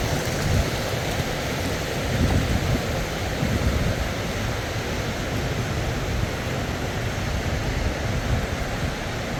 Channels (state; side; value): identical; both; correlation 1.00